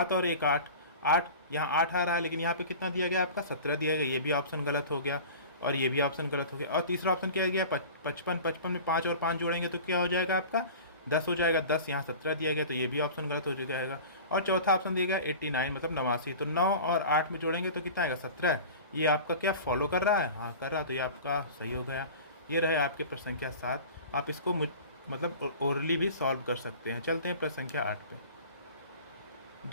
और 1 8 8 यहाँ 8 आ रहा है लेकिन यहाँ पे कितना दिया गया आपका 17 दिया गया, ये भी ऑप्शन गलत हो गया और ये भी ऑप्शन गलत हो गया। और तीसरा ऑप्शन क्या गया 55 55 में 5 और 5 जोड़ेंगे तो क्या हो जाएगा आपका 10 हो जाएगा। 10 यहाँ 17 दिया गया तो ये भी ऑप्शन गलत हो जाएगा। और चौथा ऑप्शन दिया गया 89 मतलब 89। तो 9 और 8 में जोड़ेंगे तो कितना आएगा 17। ये आपका क्या फॉलो कर रहा है, हाँ कर रहा है, तो ये आपका सही हो गया। ये रहे आपके प्रश्न संख्या 7। आप इसको मतलब ओरली भी सॉल्व कर सकते हैं। चलते हैं प्रश्न संख्या 8 पे।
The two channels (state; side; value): inverted; both; correlation -0.38